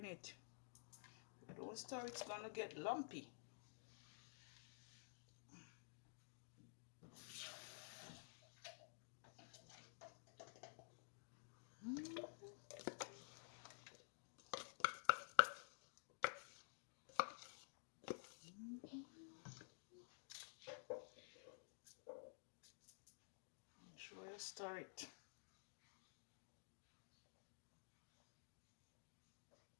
it. If you don't stir, it's gonna get lumpy. Make sure you stir it.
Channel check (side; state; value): right; silent; digital silence